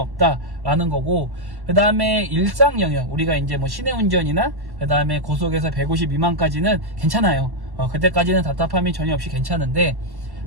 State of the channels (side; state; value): left; late; 1.1 ms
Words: 거고, 그 다음에 일상 영역 우리가 이제 뭐 시내 운전이나 그 다음에 고속에서 150 미만까지는 괜찮아요. 그때까지는 답답함이 전혀 없이 괜찮은데,